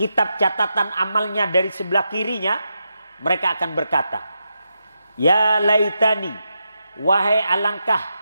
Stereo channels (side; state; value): both; inverted; correlation -0.86